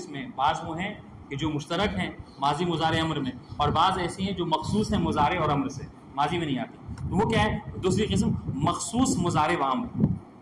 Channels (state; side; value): identical; both; correlation 1.00